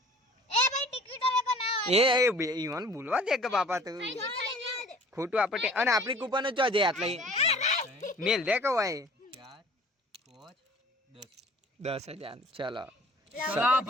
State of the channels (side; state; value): both; normal; correlation 0.49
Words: એ ભાઈ ટિકિટ હવે કો ના એ ઈવન બોલવા દે કે બાપા તું ખોટું આપણે અને આપણી કૂપન જ છે આટલે મેલ દે કે ભાઈ 4 5 10 10,000 ચલો ચલો